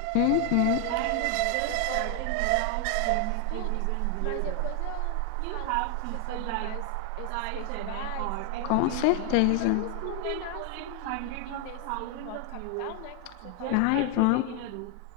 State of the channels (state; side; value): different; both; correlation 0.00